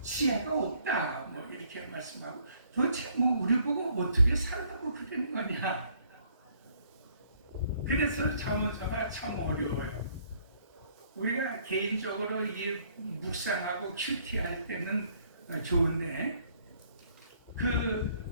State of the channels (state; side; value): inverted; both; correlation -0.64